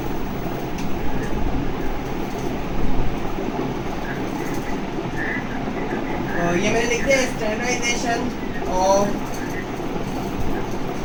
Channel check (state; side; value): identical; both; correlation 1.00